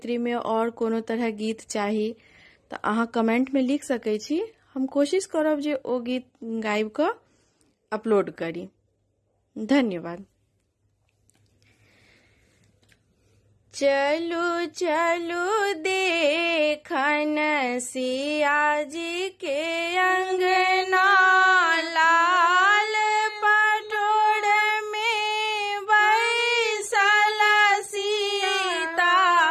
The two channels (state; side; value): identical; both; correlation 1.00